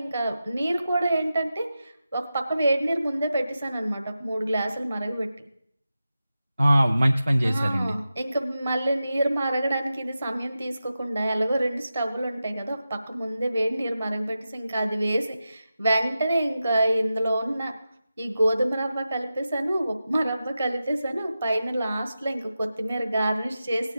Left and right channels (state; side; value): inverted; both; correlation -0.92